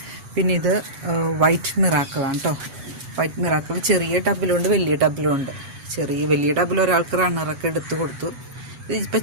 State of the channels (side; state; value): left; late; 8.1 ms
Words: പിന്നെ ഇത് വൈറ്റ് മിറാക്കിളാണ് കേട്ടോ. വൈറ്റ് മിറാക്കിൾ ചെറിയ ടബിലുണ്ട്, വലിയ ടബിലുണ്ട്. വലിയ ടബിൽ ഒരാൾക്ക് റണ്ണറൊക്കെ എടുത്ത് കൊടുത്തു. ഇതിപ്പോൾ